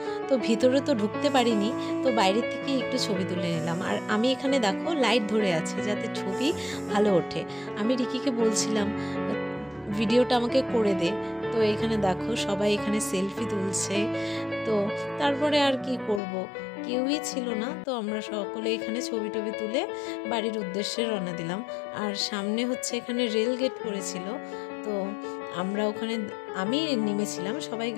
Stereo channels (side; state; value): right; drops out; at 16.2 s